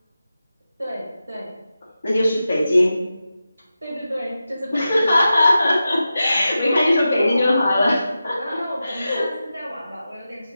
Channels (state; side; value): inverted; both; correlation -0.92